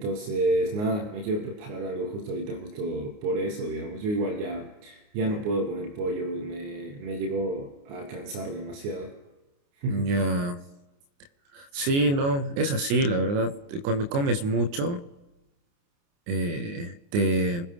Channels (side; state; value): left; late; 29 ms